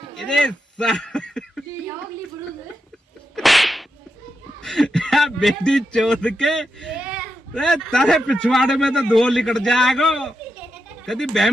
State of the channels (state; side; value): normal; both; correlation 0.86